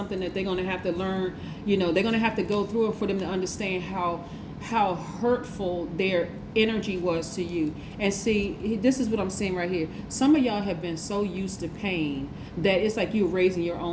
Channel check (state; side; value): identical; both; correlation 1.00